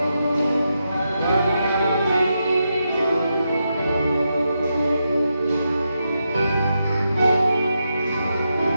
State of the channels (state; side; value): inverted; both; correlation -0.85